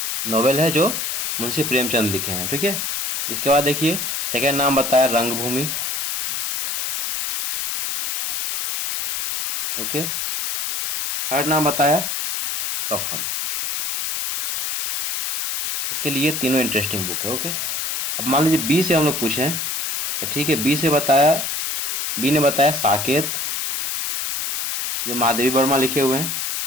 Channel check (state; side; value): noise; left; hiss, 2 dB below the sound